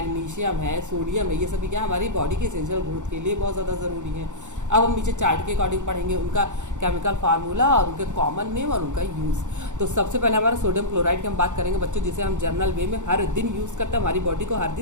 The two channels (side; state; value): left; late; 0.85 ms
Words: है, सोडियम है, ये सभी क्या हमारी बॉडी के एसेंशियल ग्रोथ के लिए बहुत ज़्यादा ज़रूरी है। अब हम नीचे चार्ट के अकॉर्डिंग पढ़ेंगे उनका केमिकल फार्मूला और उनके कॉमन नेम और उनका यूज़। तो सबसे पहले हमारा सोडियम क्लोराइड की हम बात करेंगे बच्चों, जिसे हम जनरल वे में हर दिन यूज़ करते हैं। हमारी बॉडी को हर